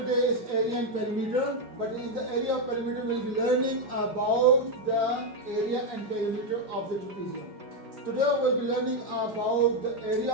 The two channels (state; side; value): late; left; 4.9 ms